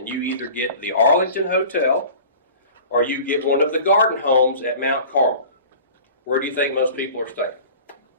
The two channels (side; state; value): both; inverted; correlation -0.42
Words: you either get the Arlington Hotel or you get one of the garden homes at Mount Carmel. Where do you think most people are staying?